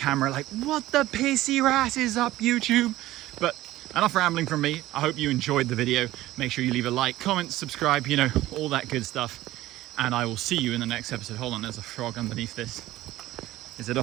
like, what the pissy rat is up, YouTube? But enough rambling from me. I hope you enjoyed the video. Make sure you leave a like, comment, subscribe, you know, all that good stuff. And I will see you in the next episode. Hold on, there's a frog underneath this. Is it a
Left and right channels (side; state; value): left; quieter; 16.0 dB